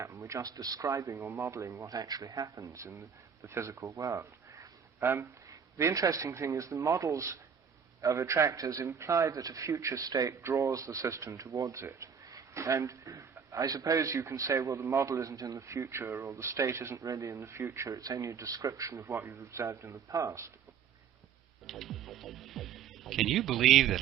We're just describing or modeling what actually happens in the physical world. The interesting thing is the models of attractors imply that a future state draws the system towards it. And I suppose you can say, well, the model isn't in the future, or the state isn't really in the future, it's only a description of what you've observed in the past. Can you believe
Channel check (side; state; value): left; quieter; 7.1 dB